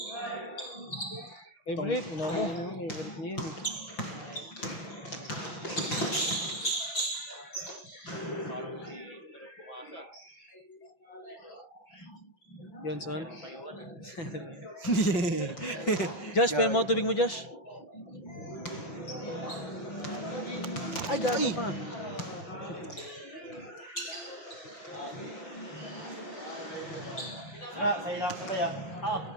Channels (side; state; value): right; late; 5.9 ms